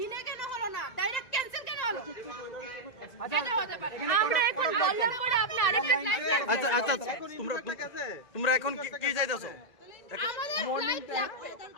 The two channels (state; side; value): late; right; 2.0 ms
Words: কেন হলো না, ডাইরেক্ট ক্যান্সেল কেন হলো? এটা হতে পারে আমরা এখন বললাম পরে আপনি আরেকটা ফ্লাইট। আচ্ছা আচ্ছা, তোমরা এখন কি চাইতেছো? আমাদের ফ্লাইট লাগবে,